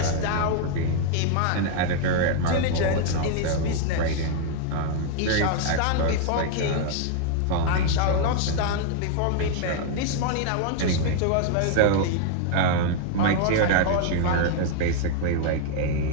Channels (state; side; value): different; both; correlation 0.00